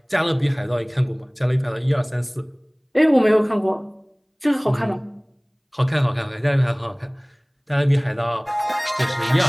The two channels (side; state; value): both; identical; correlation 1.00